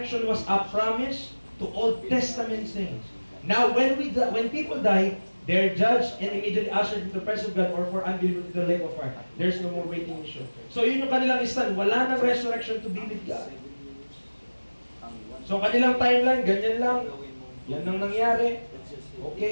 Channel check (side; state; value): both; inverted; correlation -1.00